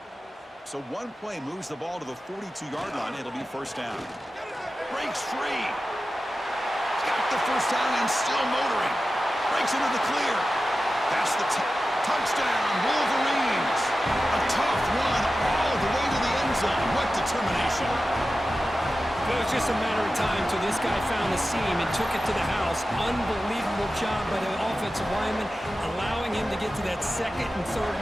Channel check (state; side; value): normal; both; correlation 0.94